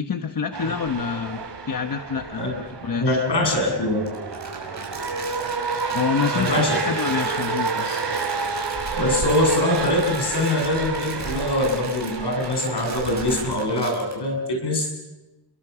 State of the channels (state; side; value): normal; both; correlation 0.02